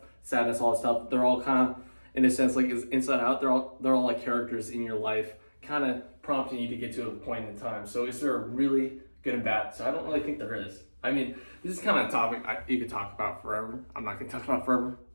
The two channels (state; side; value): inverted; both; correlation -1.00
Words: sadness, all that stuff. They're all kind of, in a sense, like inside out. They're all like characters in your life, kind of prompting you to get to a point in time. So is there a really good and bad? So I don't really think there is. I mean, this is kind of a topic you could talk about forever. I'm not going to talk about forever.